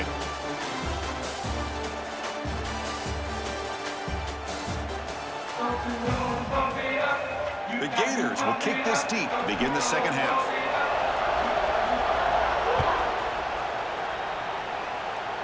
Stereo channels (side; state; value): both; identical; correlation 1.00